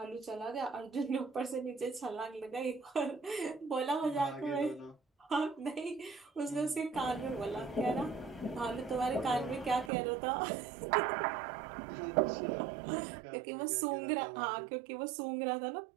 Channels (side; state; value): left; drops out; at 9.9 s